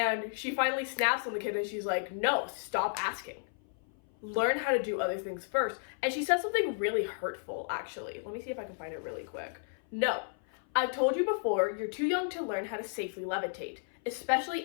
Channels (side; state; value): right; silent; 55 dB below the other